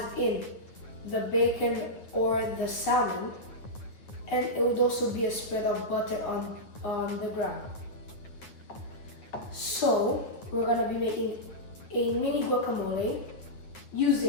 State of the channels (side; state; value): right; late; 9.2 ms